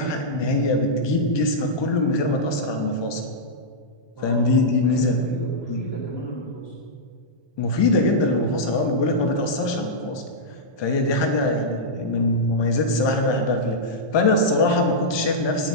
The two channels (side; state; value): right; late; 1.2 ms